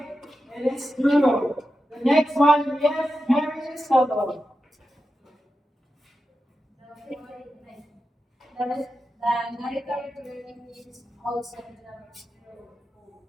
it is true. The next one, yes, Mary Soto. The narrator learning is also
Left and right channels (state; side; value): normal; both; correlation 0.91